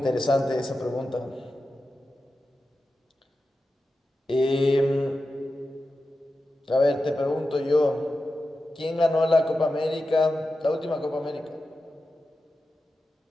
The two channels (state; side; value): normal; both; correlation 0.92